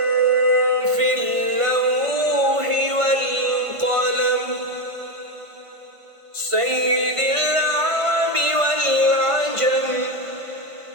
في اللوح والقلم سيد العرب والعجم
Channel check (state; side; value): late; left; 1.5 ms